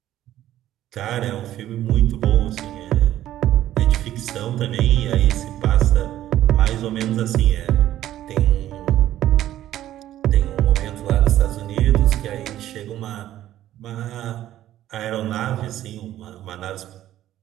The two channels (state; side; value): quieter; left; 13.0 dB